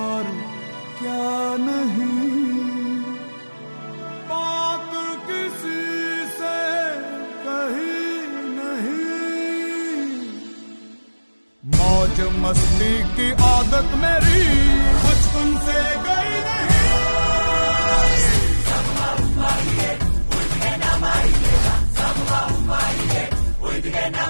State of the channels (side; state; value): both; inverted; correlation -1.00